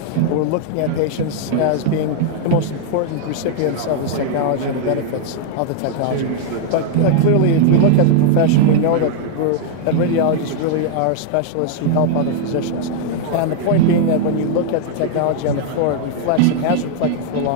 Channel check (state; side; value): different; both; correlation 0.00